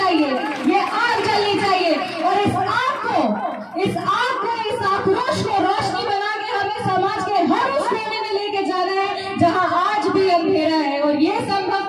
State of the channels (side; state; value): both; identical; correlation 1.00